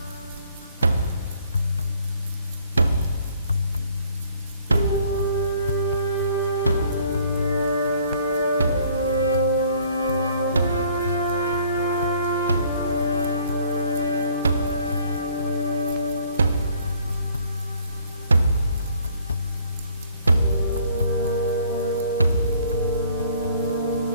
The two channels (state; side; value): inverted; both; correlation -0.59